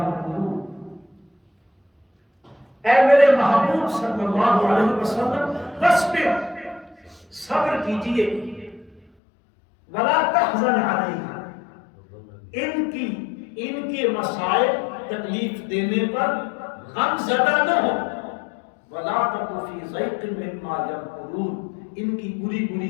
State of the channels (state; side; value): drops out; right; at 9.1 s